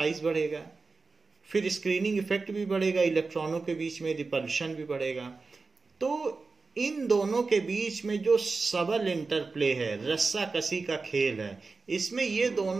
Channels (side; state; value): left; quieter; 4.1 dB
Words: बढ़ेगा, फिर स्क्रीनिंग इफेक्ट भी बढ़ेगा, इलेक्ट्रॉनों के बीच में रिपल्शन भी बढ़ेगा. तो इन दोनों के बीच में जो सबल इंटरप्ले है, रस्सा कसी का खेल है, इसमें ये